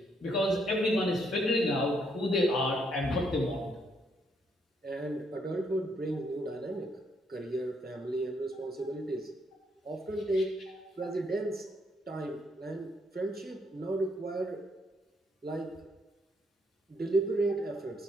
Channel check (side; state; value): both; normal; correlation 0.73